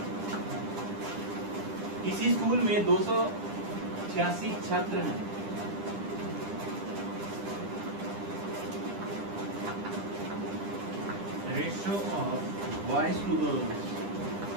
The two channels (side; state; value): left; late; 10 ms